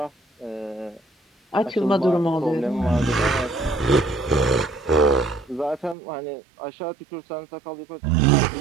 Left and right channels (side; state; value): left; drops out; at 6.0 s